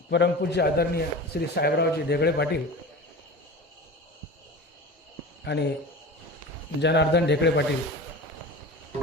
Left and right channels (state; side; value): normal; both; correlation 0.33